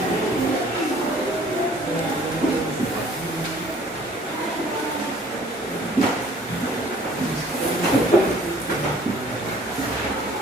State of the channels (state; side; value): normal; both; correlation 0.54